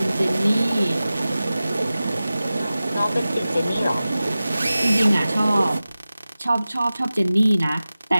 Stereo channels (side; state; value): both; inverted; correlation -0.96